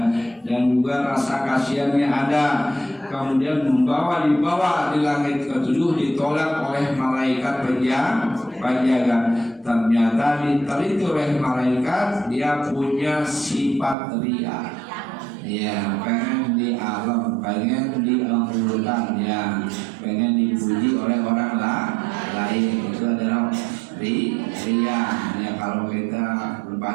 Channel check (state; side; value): drops out; left; at 14.0 s